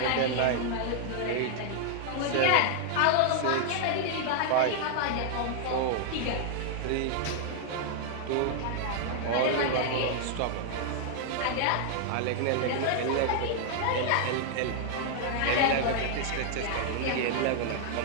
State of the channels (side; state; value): both; different; correlation 0.00